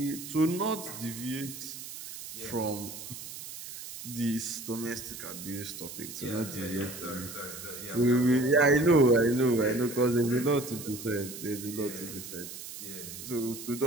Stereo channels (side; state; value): right; noise; hiss, 11 dB below the sound